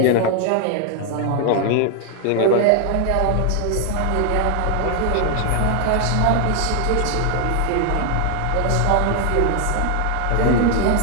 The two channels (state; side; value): different; both; correlation 0.00